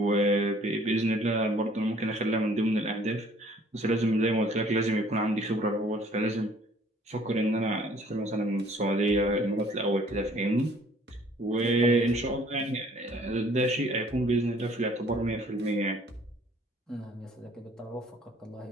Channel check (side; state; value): both; normal; correlation 0.57